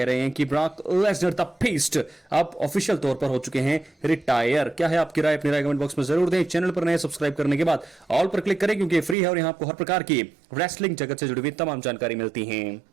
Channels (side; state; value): left; drops out; at 9.2 s